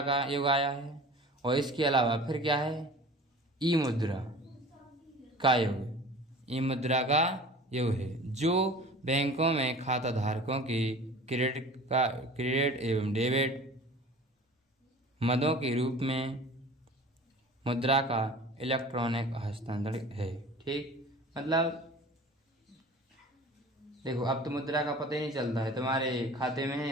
का युग आया है। और इसके अलावा फिर क्या है, ई मुद्रा का युग है, जो बैंकों में खाता धारकों की क्रेडिट एवं डेबिट मदों के रूप में मुद्रा का इलेक्ट्रॉनिक हस्तांतरण है। ठीक, मतलब देखो, अब तो मुद्रा का पता ही नहीं चलता है, तुम्हारे खाते में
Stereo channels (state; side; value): normal; both; correlation 0.42